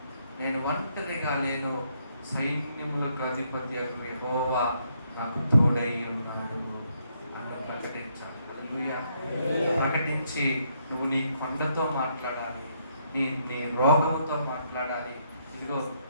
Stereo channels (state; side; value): inverted; both; correlation -0.73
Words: నేను ఒంటరిగా లేను, సైన్యములకు అధిపతి యెహోవా నాకు తోడై ఉన్నాడు అని ప్రకటించాలి. హల్లెలూయా. ప్రకటించి నువ్వు నీ కొండతో మాట్లాడాలి, నీ రోగంతో మాట్లాడాలి, ఇదిగో